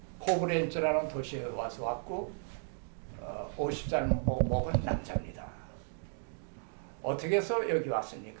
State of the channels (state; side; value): silent; left; digital silence